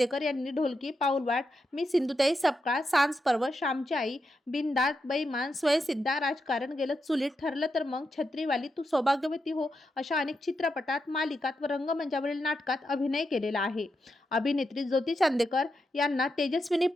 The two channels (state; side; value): normal; both; correlation 0.85